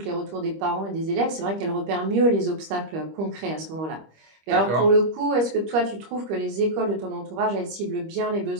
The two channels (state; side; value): late; left; 25 ms